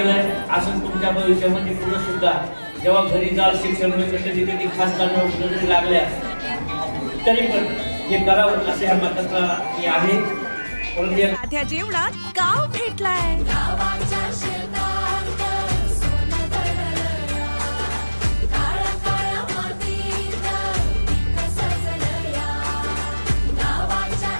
असं तुमच्या भविष्यामध्ये पुढे सुद्धा जेव्हा घरी जाल शिक्षण मिळतं, कधी कधी खासदार नोकरी जरी लागल्या तरी पण हे करावं असे ह्या मताचा मी आहे. साध्या जेवणात गाव भेटलाय.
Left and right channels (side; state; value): both; inverted; correlation -1.00